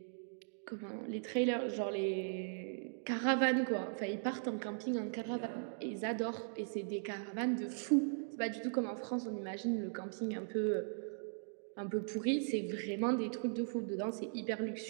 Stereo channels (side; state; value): left; silent; digital silence